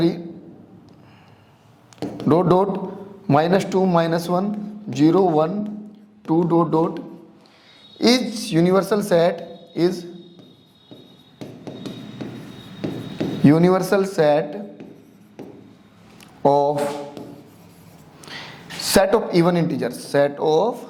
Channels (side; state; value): both; identical; correlation 1.00